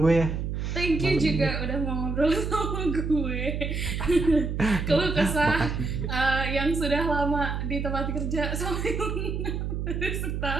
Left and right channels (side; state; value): right; noise; hum, 3 dB below the sound